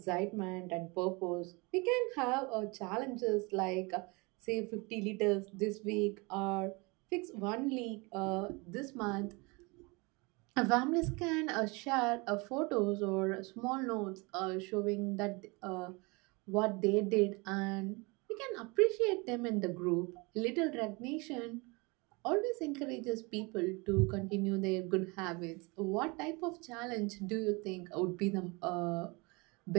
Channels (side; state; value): left; quieter; 27.3 dB